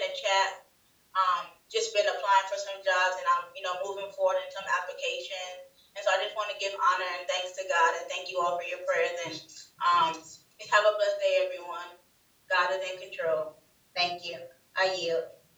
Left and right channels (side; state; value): both; identical; correlation 1.00